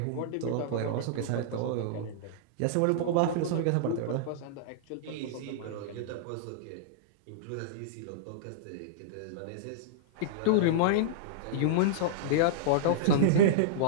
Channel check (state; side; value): different; both; correlation -0.02